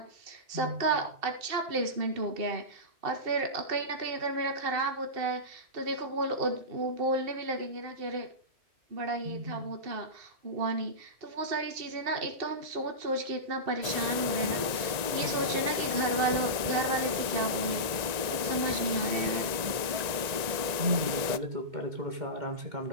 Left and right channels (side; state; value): left; late; 1.9 ms